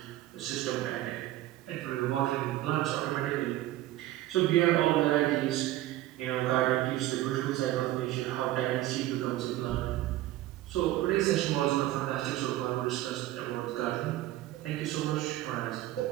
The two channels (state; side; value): quieter; left; 15.4 dB